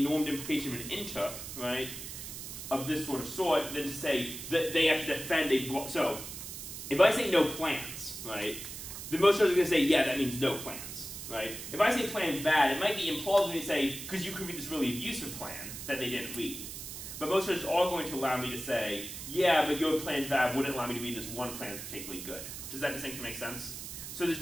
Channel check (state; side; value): noise; right; hiss, 9 dB below the sound